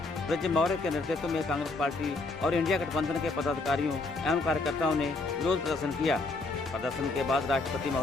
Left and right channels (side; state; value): right; quieter; 3.3 dB